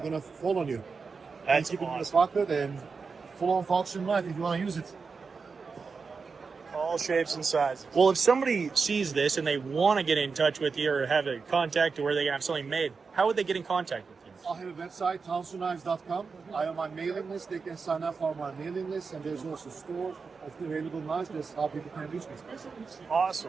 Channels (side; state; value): left; quieter; 4.9 dB